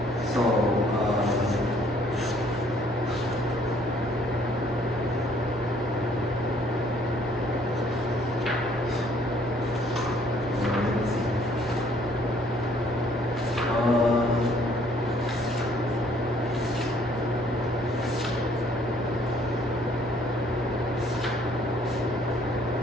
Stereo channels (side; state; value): both; normal; correlation 0.61